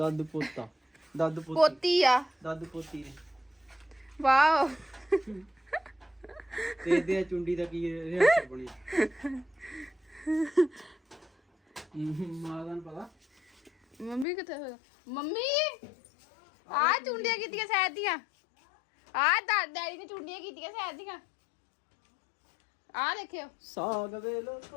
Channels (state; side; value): drops out; right; at 14.2 s